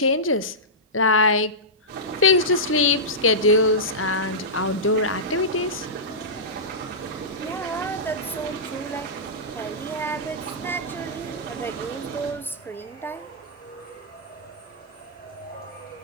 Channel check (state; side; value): normal; both; correlation -0.15